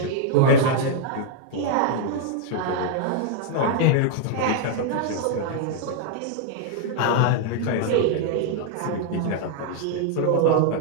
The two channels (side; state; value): both; different; correlation 0.00